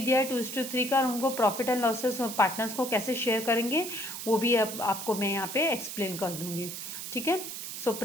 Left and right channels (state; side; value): noise; right; hiss, 7 dB below the sound